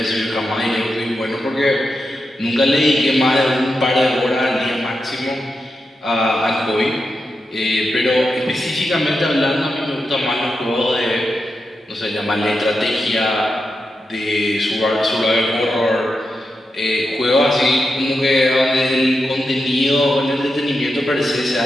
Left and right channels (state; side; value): normal; both; correlation 0.88